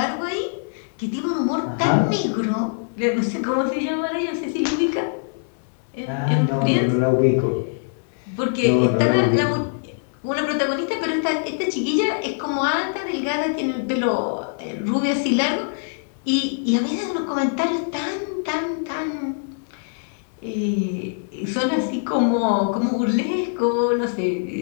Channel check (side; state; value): right; silent; digital silence